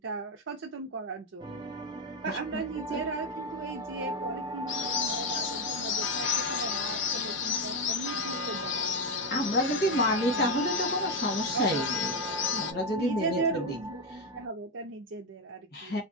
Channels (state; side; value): normal; both; correlation 0.08